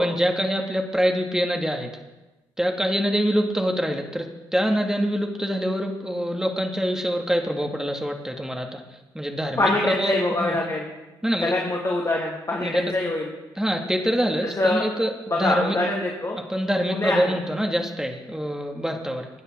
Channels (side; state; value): both; normal; correlation 0.86